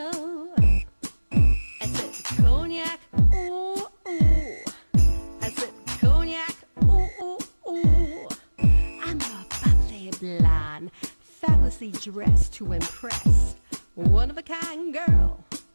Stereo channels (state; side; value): inverted; both; correlation -1.00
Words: I said Cognac, ooh, ooh. I said Cognac, ooh, ooh, ooh. I'm a bubbly blonde, fabulously dressed to impress. One of a kind girl.